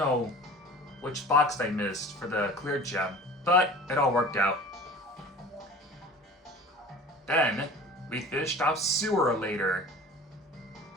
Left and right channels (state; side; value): normal; both; correlation 0.41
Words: which box I missed for the clear gem, but it all worked out. Then, we finished off Sewer later.